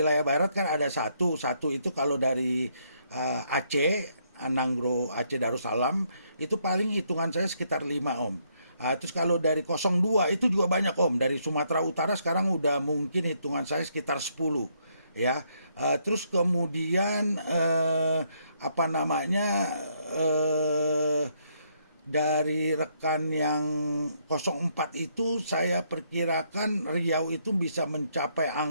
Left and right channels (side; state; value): both; inverted; correlation -0.73